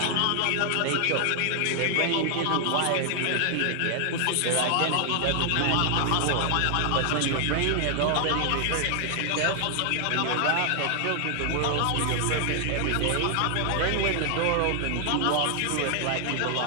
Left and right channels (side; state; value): both; different; correlation 0.00